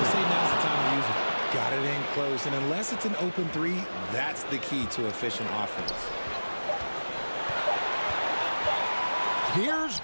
say now's the time to use it. Got it in close, and unless it's an open three, that's the key to efficient offense. Here's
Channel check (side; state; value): both; inverted; correlation -1.00